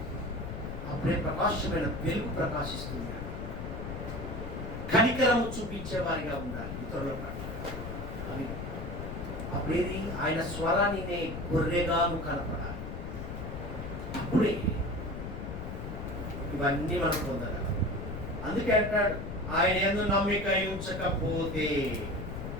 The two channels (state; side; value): noise; left; rumble, 6 dB below the sound